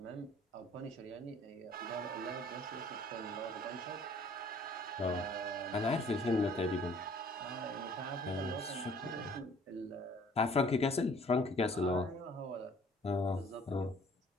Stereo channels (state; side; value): normal; both; correlation 0.55